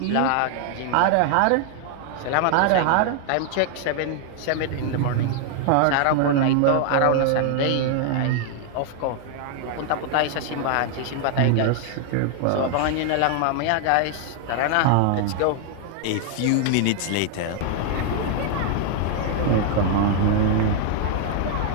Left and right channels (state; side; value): different; both; correlation 0.00